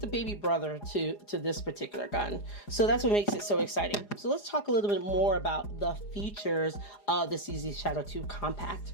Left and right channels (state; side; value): late; right; 4.9 ms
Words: baby brother to this particular gun. So that's what makes it so exciting. So let's talk a little bit more about the features of the CZ Shadow 2 Compact.